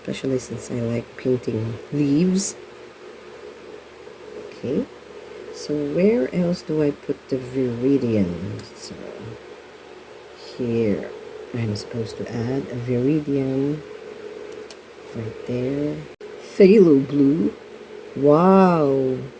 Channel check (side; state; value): both; identical; correlation 1.00